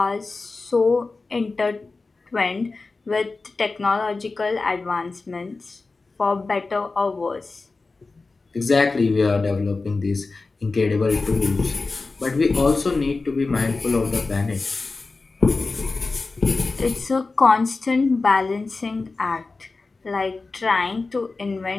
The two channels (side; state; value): right; quieter; 3.8 dB